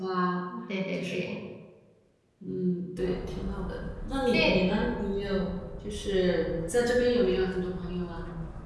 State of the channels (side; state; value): both; identical; correlation 1.00